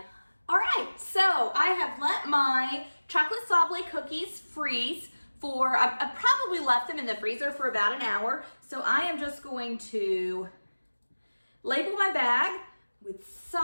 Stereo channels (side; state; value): both; inverted; correlation -1.00